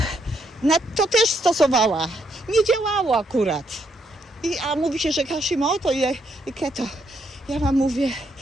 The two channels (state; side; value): normal; both; correlation 0.75